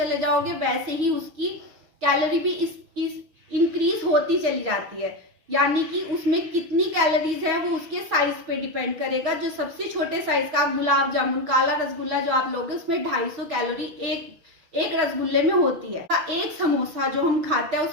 जाओगे वैसे ही उसकी कैलोरी भी इस होती चली जाती है। यानी कि उसमें कितनी कैलोरीज है वो उसके साइज पे डिपेंड करेगा। जो सबसे छोटे साइज का आप गुलाब जामुन, काला रसगुल्ला जो आप लोगे उसमें 250 कैलोरी एक रसगुल्ले में होती है। एक समोसा जो हम खाते हैं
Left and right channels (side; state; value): left; late; 6.2 ms